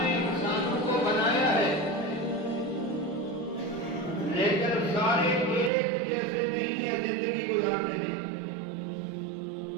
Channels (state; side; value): drops out; left; at 5.7 s